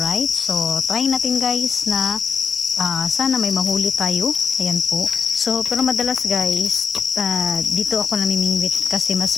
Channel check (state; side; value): quieter; right; 6.1 dB